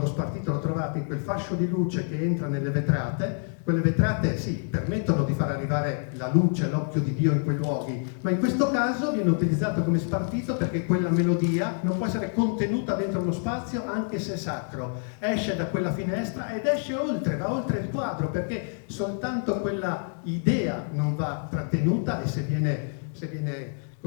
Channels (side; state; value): right; silent; 56 dB below the other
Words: spartito lo trovate in quel fascio di luce che entra nelle vetrate. Quelle vetrate sì, permettono di far arrivare la luce, l'occhio di Dio in quei luoghi, ma in questo caso viene utilizzato come spartito perché quella melodia non può essere contenuta dentro uno spazio anche se sacro. Esce da quella finestra ed esce oltre, va oltre il quadro, perché soltanto quella idea non va trattenuta e se viene